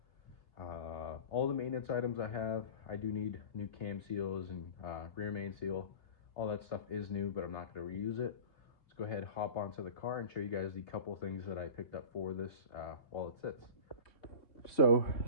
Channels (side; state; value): right; late; 2.8 ms